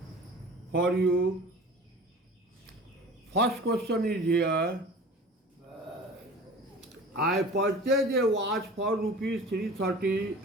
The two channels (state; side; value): normal; both; correlation 0.40